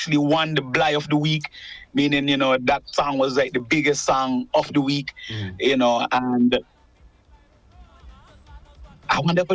won the Bly of the week, meaning that song was like the biggest song of the week, and I wonder if I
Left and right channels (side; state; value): both; identical; correlation 1.00